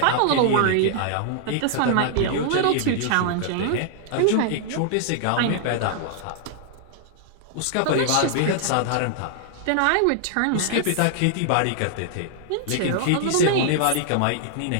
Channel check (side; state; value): both; different; correlation -0.01